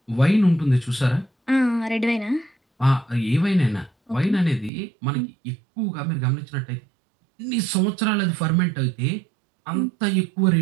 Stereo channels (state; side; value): drops out; left; at 4.7 s